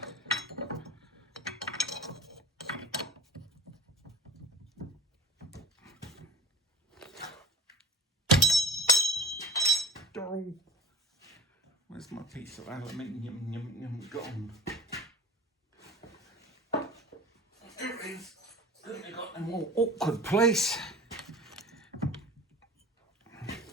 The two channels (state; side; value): normal; both; correlation 0.38